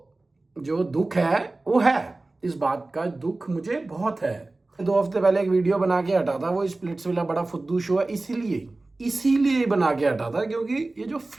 जो दुख है वो है, इस बात का दुख मुझे बहुत है। 2 हफ्ते पहले एक वीडियो बना के हटा था, वो स्प्लिट्स वाला बड़ा फुद्दू शो है, इसीलिए बना के हटा था, क्योंकि ये जो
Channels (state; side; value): quieter; left; 3.1 dB